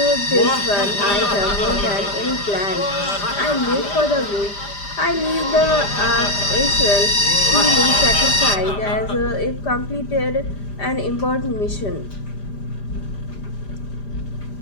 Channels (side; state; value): right; late; 5.0 ms